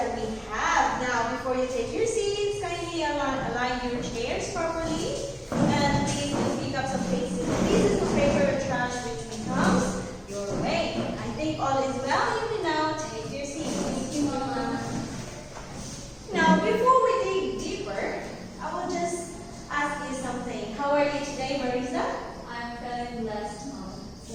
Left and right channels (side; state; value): both; identical; correlation 1.00